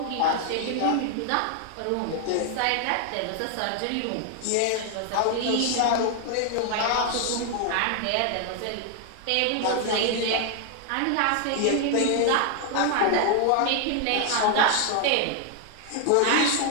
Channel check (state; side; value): different; both; correlation 0.00